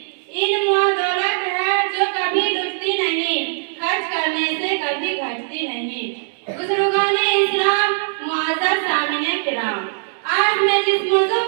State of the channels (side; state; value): left; silent; digital silence